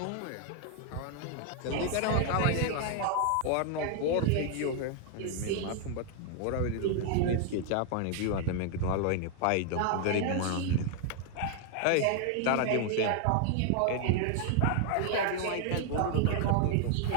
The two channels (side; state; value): both; different; correlation 0.00